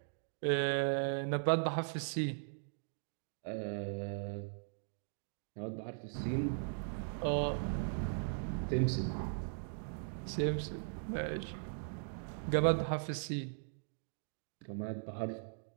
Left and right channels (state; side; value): silent; left; digital silence